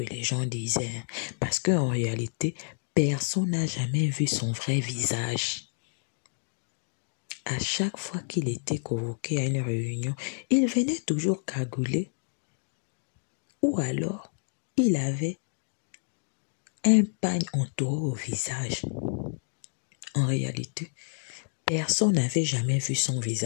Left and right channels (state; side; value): silent; right; digital silence